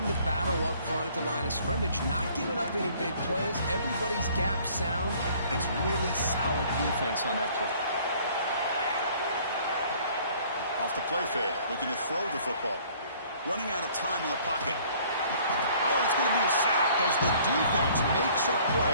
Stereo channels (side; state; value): both; inverted; correlation -0.56